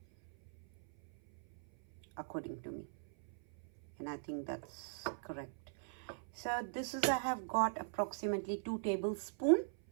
according to me, and I think that's correct. So this is, I have got approximately 2 tablespoons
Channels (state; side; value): silent; left; 51 dB below the other